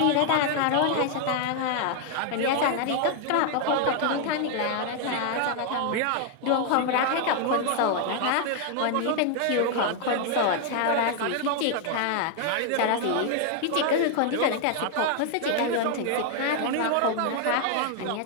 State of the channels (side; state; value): both; different; correlation 0.00